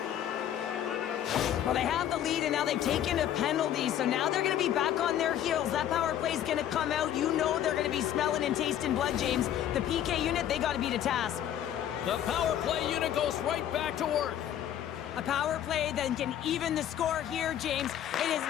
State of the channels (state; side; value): quieter; right; 10.8 dB